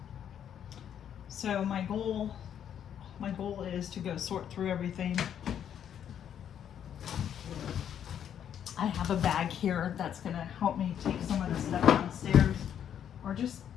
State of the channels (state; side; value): quieter; right; 9.3 dB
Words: So my goal is to go sort through everything. I have a bag here that's gonna help me take some of the stuff downstairs, or just